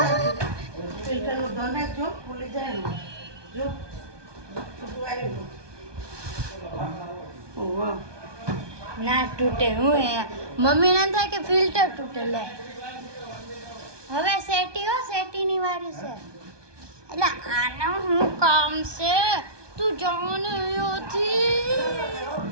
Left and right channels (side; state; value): left; late; 1.2 ms